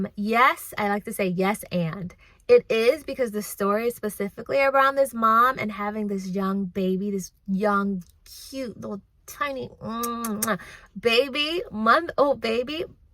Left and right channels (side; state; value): both; identical; correlation 1.00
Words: Yes, I like to say yes and. It is because the story is specifically around this mom and having this young baby, this young, cute, little tiny baby, month-old baby.